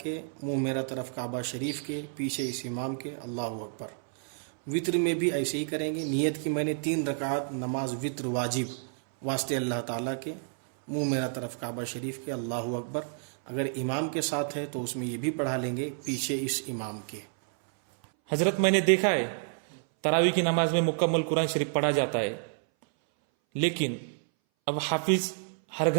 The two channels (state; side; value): silent; left; 58 dB below the other